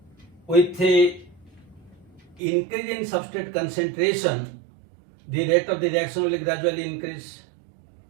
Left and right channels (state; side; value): drops out; left; at 2.4 s